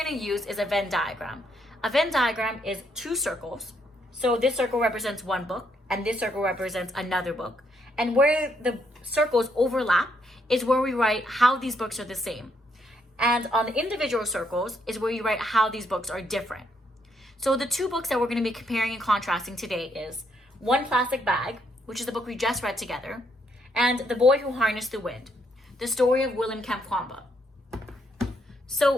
to use is a Venn diagram. A Venn diagram is 2 circles. So this circle represents one book and this circle represents another book. And where the circles overlap is where we write how these books are the same. And on the individual circles is where you write how these books are different. So the 2 books that we're going to be comparing and contrasting today is One Plastic Bag, which is the book we just read together, and The Boy Who Harnessed the Wind, the story of William Kamkwamba.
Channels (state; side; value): normal; both; correlation 0.74